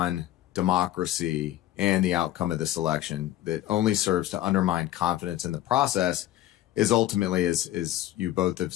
democracy and the outcome of this election that only serves to undermine confidence in the process is ultimately, as you both have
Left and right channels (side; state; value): right; quieter; 14.0 dB